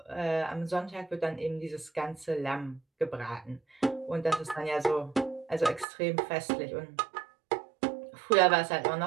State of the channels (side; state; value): left; drops out; at 5.9 s